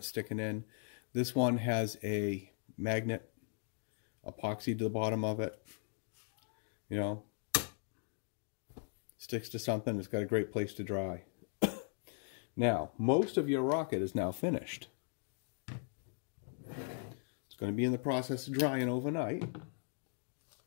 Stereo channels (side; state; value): right; silent; 52 dB below the other